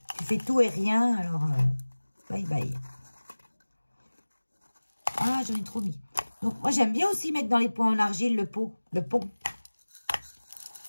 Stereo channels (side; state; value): both; inverted; correlation -1.00